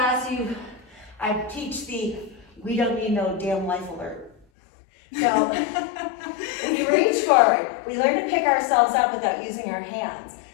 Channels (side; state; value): right; drops out; at 4.4 s